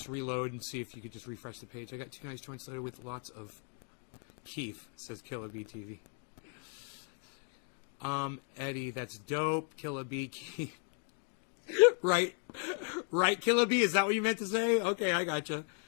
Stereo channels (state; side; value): quieter; right; 39.7 dB